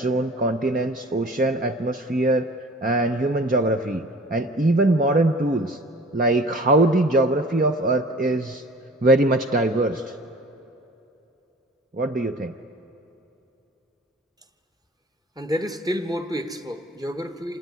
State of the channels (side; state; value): both; normal; correlation 0.45